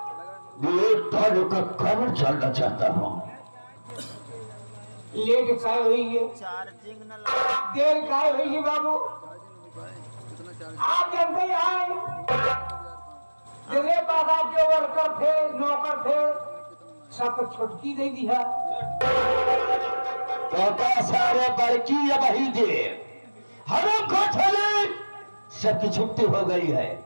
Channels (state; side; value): inverted; both; correlation -1.00